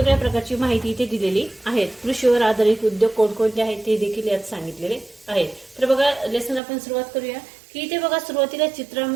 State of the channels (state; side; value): drops out; left; at 6.6 s